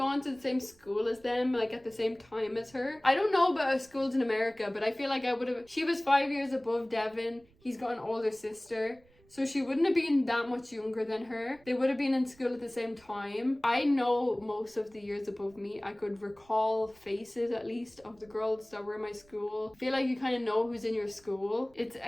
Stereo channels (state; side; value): noise; right; rumble, 30 dB below the sound